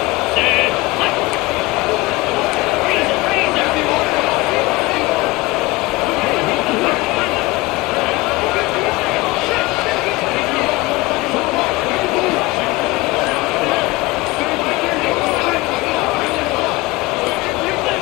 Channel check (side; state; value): right; quieter; 21.6 dB